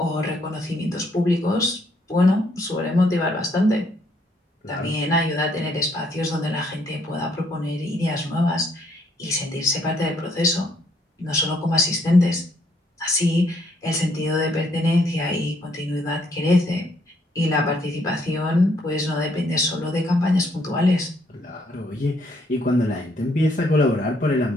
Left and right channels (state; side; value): normal; both; correlation 0.69